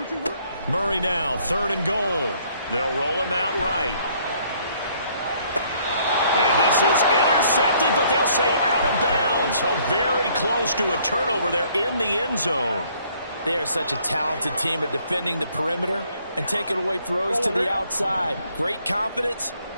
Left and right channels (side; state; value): both; inverted; correlation -0.64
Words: Murray now, third and goal. They'll roll him out right. And this is intercepted, but they'll say out of bounds. So very close to a turnover there in the end zone. They are such a talented team at defending the perimeter and taking away throws to the outside. Great confidence,